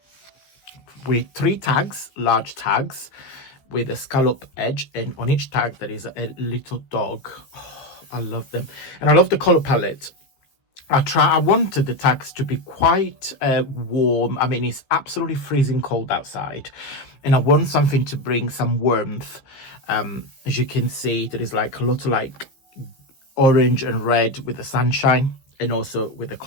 with 3 tags, large tags with a scallop edge, and on each tag there is a little dog. Oh, I love them, and I love the color palette. I wanted the tags to be quite warm. I mean, it's absolutely freezing cold outside, and I want something to bring some warmth. As you can see, there is like a lot of like orange and red with the sunshine, and also with the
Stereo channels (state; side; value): late; right; 15 ms